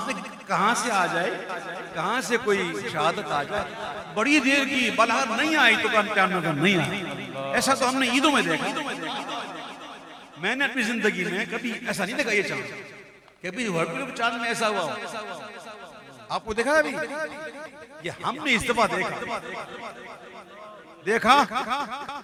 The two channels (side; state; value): both; identical; correlation 1.00